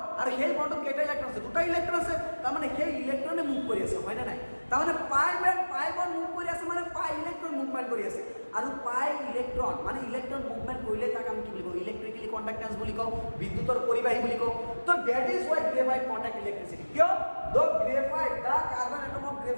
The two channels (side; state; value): both; inverted; correlation -1.00